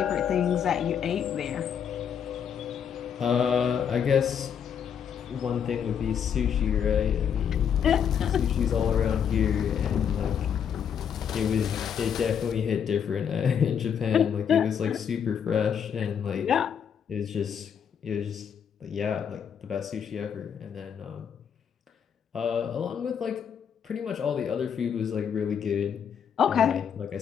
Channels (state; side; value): quieter; right; 7.9 dB